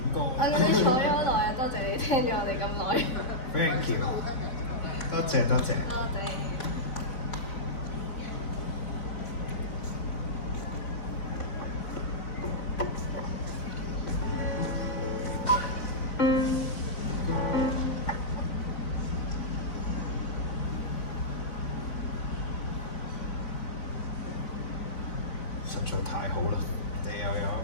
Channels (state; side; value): late; right; 4.0 ms